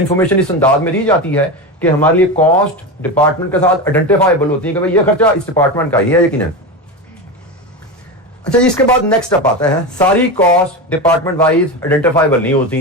इस अंदाज में दी जाती है कि हमारे लिए कॉस्ट डिपार्टमेंट के साथ आइडेंटिफाइबल होती है कि भाई ये खर्चा इस डिपार्टमेंट का ही है यकीनन। अच्छा, इसके बाद नेक्स्ट स्टेप आता है, सारी कॉस्ट डिपार्टमेंट वाइज आइडेंटिफाइबल नहीं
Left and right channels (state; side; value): normal; both; correlation 0.20